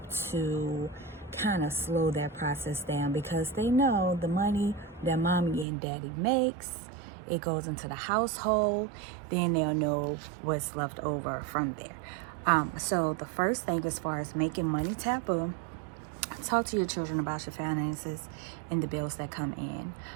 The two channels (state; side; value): drops out; left; at 5.7 s